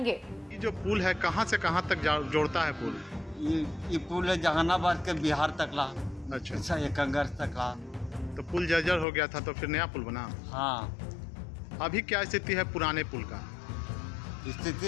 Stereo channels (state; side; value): drops out; right; at 9.1 s